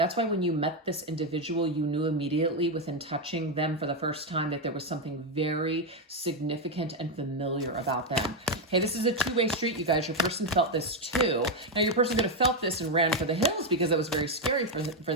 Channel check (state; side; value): normal; both; correlation 0.05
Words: why when you met this individual, you knew immediately within touching them for the first time that there was something very significant and familiar about them. Hey, this is a two-way street, you guys. Your person felt this too. Now, your person could have felt this and ran for the hills because it was very scary for